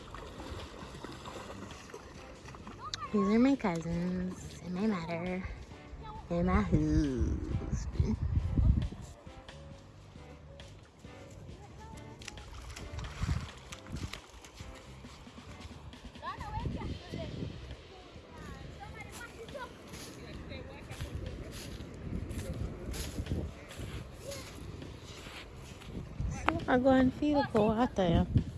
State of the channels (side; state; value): both; identical; correlation 1.00